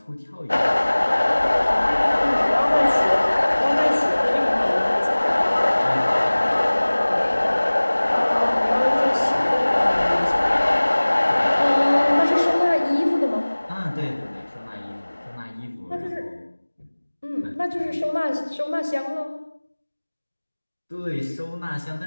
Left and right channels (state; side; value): inverted; both; correlation -1.00